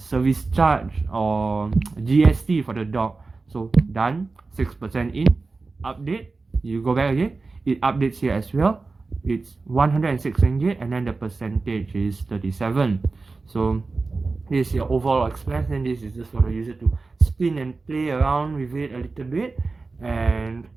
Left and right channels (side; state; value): left; quieter; 3.8 dB